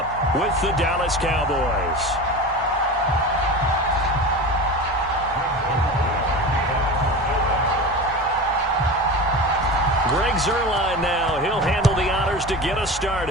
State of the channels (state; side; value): normal; both; correlation 0.29